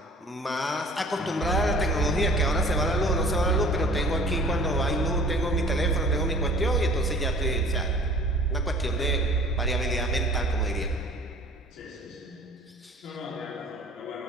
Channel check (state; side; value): normal; both; correlation 0.49